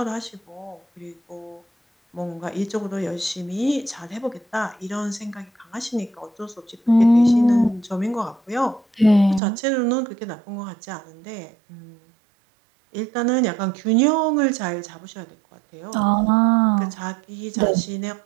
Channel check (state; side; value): drops out; left; at 9.4 s